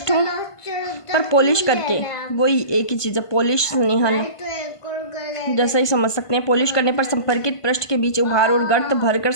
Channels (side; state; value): right; late; 1.5 ms